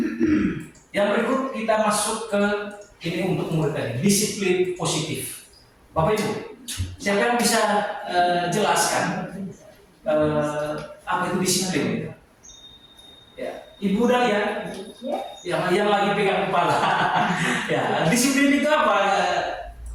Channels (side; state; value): both; identical; correlation 1.00